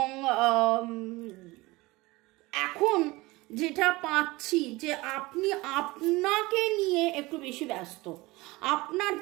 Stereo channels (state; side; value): quieter; left; 21.6 dB